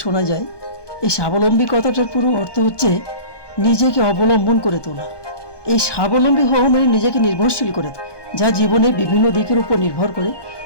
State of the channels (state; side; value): late; right; 1.2 ms